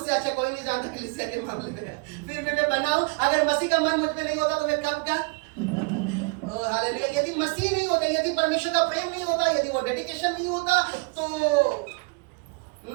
अच्छा कोई नहीं जानता कलीसिया के मामले में। फिर भी मैं बनाऊं, अगर मसीह का मन मुझ में नहीं होता तो मैं कब का। हालेलुया। यदि मसीह नहीं होता, यदि परमेश्वर का प्रेम नहीं होता, यदि वो डेडिकेशन नहीं होता तो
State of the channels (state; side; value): quieter; left; 32.1 dB